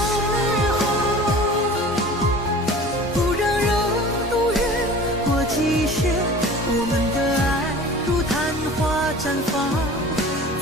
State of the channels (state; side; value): normal; both; correlation 0.41